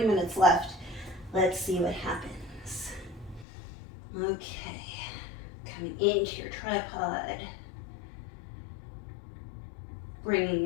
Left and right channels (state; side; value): drops out; right; at 3.5 s